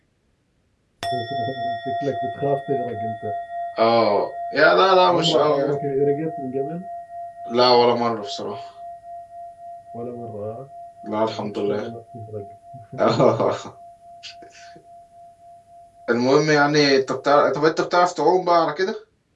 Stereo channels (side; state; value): both; identical; correlation 1.00